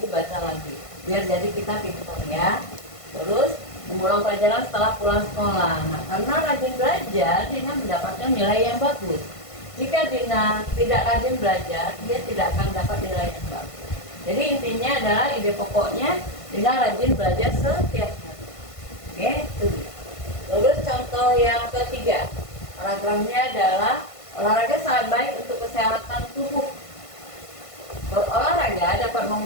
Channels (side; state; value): right; late; 1.5 ms